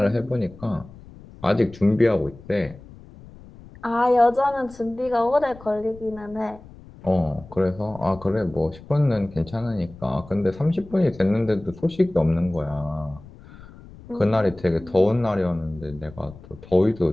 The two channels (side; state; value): left; noise; rumble, 20 dB below the sound